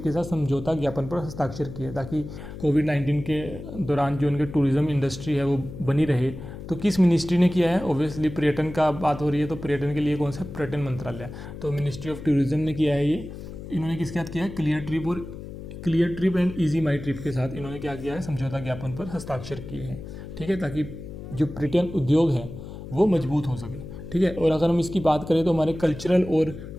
के साथ समझौता ज्ञापन पर हस्ताक्षर किए, ताकि कोविड-19 के दौरान जो उनके टूरिज्म इंडस्ट्री है वो बनी रहे। तो किस मिनिस्ट्री ने किया है? ऑब्वियसली पर्यटन का बात हो रही है तो पर्यटन के लिए कौन सा? पर्यटन मंत्रालय। तो मिनिस्ट्री ऑफ टूरिज्म ने किया है ये। इन्होंने किसके साथ किया है? Clear trip and easy my trip के साथ इन्होंने क्या किया है? समझौता ज्ञापन पर हस्ताक्षर किए हैं। ठीक है, ताकि जो पर्यटन उद्योग है वो मजबूत हो सके। ठीक है, और अगर हम इसकी बात करें तो हमारे कल्चरल और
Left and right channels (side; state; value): left; noise; hum, 11 dB below the sound